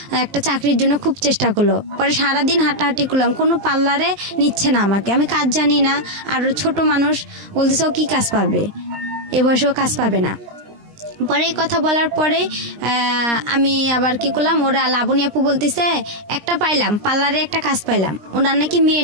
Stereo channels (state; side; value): late; left; 19 ms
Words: একটা চাকরির জন্য খুব চেষ্টা করলো। পরে সারাদিন হাঁটাহাঁটি করলাম, কোনো পার্লারে নিচ্ছে না আমাকে, আমি কাজ জানি না, আর ছোট মানুষ, বলতেছে ও কি কাজ পাবে, এ বয়সেও কাজ পাবে না। পরে এই কথা বলার পরে আমি আবার কি করলাম, ওরা লাবণী আপু বলতেছে একটা পাইলাম, পার্লারে একটা কাজ পাইলাম, ওনার নাকি মেয়ে